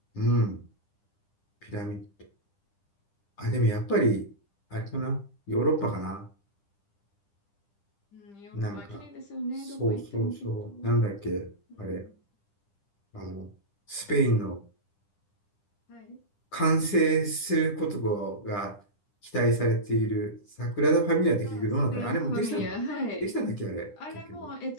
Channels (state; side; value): late; right; 10 ms